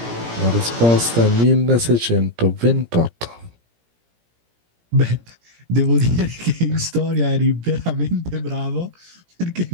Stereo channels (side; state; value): left; late; 17 ms